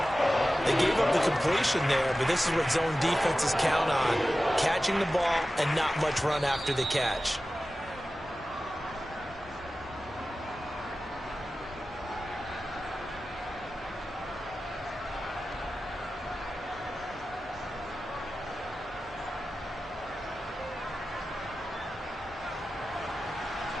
They gave up the completion there, but this is what zone defenses count on. Catching the ball and not much run after the catch.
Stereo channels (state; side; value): normal; both; correlation 0.95